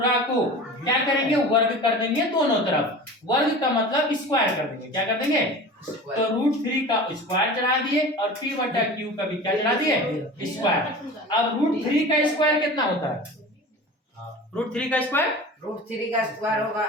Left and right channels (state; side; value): normal; both; correlation 0.36